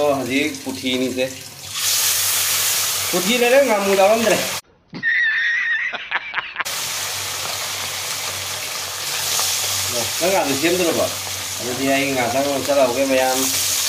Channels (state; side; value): identical; both; correlation 1.00